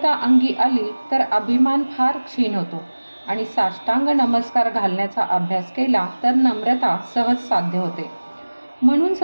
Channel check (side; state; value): both; inverted; correlation -1.00